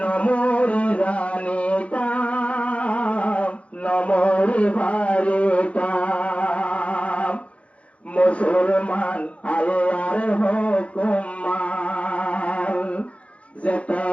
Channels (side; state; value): right; late; 0.063 ms